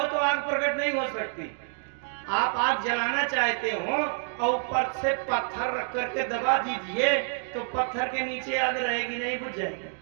तो आग प्रकट नहीं हो सकती। आप आग जलाना चाहते हो और ऊपर से पत्थर रख करके दबा दीजिए तो पत्थर के नीचे आग रहेगी नहीं, बुझ जाएगी।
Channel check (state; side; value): silent; left; 59 dB below the other